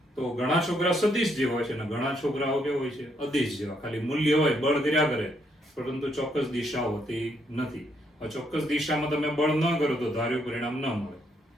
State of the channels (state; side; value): normal; both; correlation 0.74